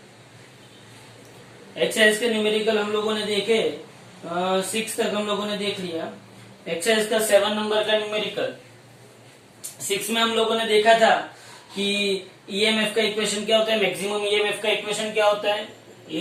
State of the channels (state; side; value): identical; both; correlation 1.00